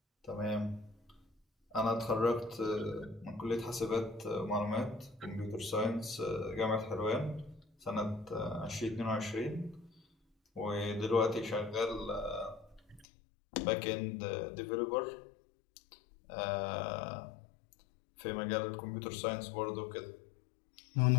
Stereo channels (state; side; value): drops out; right; at 13.1 s